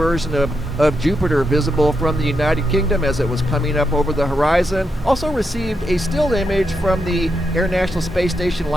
of Jupiter visible from the United Kingdom as it was coming up over the horizon. Also received a still image from the International Space Station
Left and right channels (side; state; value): both; normal; correlation 0.84